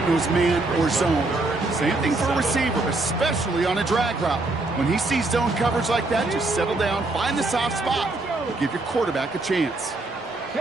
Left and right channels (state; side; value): quieter; left; 3.1 dB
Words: knows man or zone. Same thing for a receiver, especially on a drag route. When he sees zone coverage like that, just settle down, find the soft spot, give your quarterback a chance.